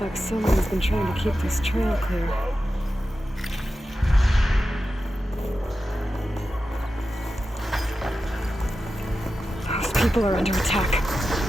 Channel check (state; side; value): normal; both; correlation 0.91